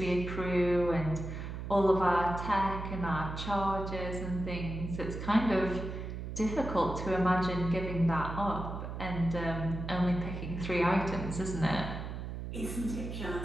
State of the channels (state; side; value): noise; right; hum, 6 dB below the sound